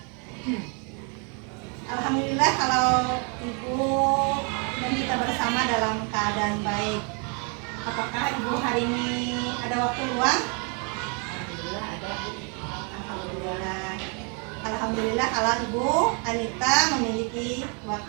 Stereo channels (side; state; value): left; quieter; 36.2 dB